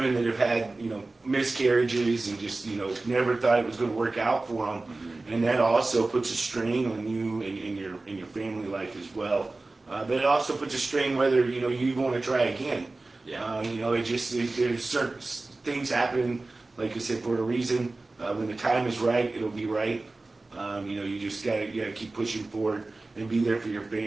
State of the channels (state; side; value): quieter; left; 3.2 dB